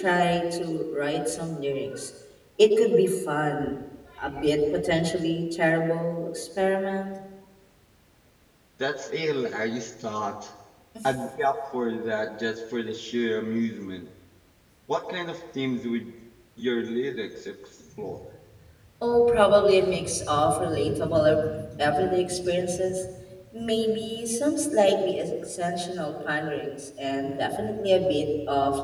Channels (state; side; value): identical; both; correlation 1.00